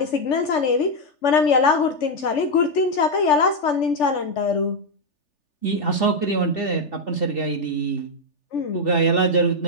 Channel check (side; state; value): right; late; 3.4 ms